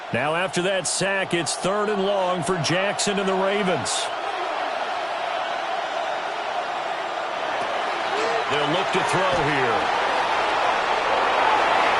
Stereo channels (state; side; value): identical; both; correlation 1.00